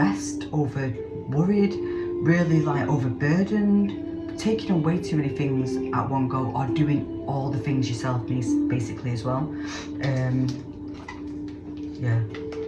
over worried, really like overburdened, taking on way too many things at one go, or doing all the things yourself, basically, as well. Yeah,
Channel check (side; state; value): both; identical; correlation 1.00